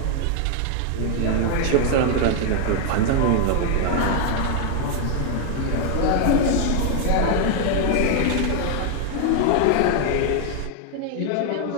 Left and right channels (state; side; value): different; both; correlation 0.00